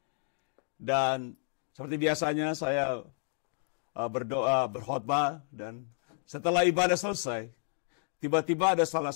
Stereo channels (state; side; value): silent; right; digital silence